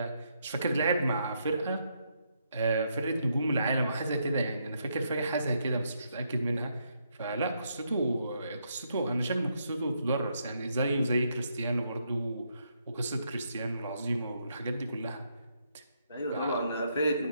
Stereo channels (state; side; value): inverted; both; correlation -0.77